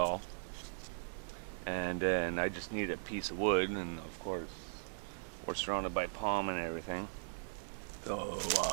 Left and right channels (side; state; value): left; silent; digital silence